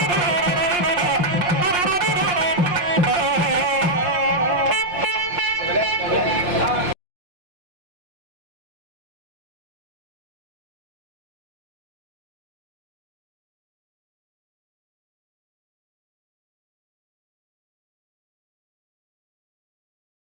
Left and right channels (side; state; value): left; late; 5.6 ms